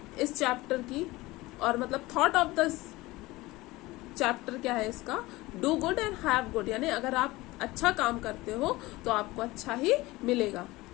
इस चैप्टर की, और मतलब थॉट ऑफ द चैप्टर क्या है इसका? Do good and have good, यानी अगर आप अच्छा काम करते हो तो आपको अच्छा ही मिलेगा,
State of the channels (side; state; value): right; quieter; 20.0 dB